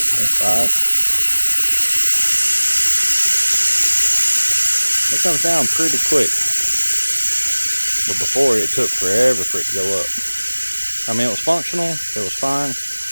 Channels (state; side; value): inverted; both; correlation -1.00